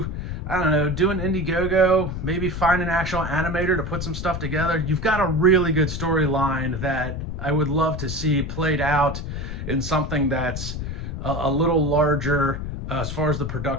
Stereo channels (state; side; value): noise; left; rumble, 6 dB below the sound